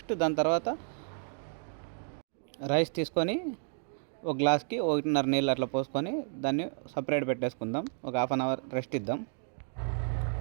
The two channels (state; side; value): silent; left; 57 dB below the other